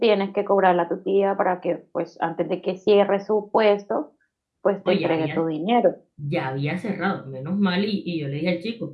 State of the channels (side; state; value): both; identical; correlation 1.00